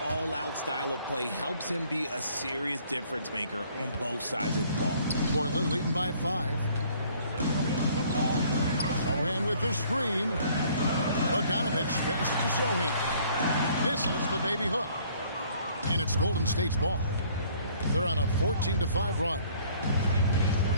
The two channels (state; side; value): inverted; both; correlation -0.59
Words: all-out style of play helps him be a serious difference maker on both sides of the ball. Portland leading by 5. Sohan with the screen. Bogdanovich passes to Sohan. Misses the baby hook. And it's Golden State's ball. They're on a 14-5 run.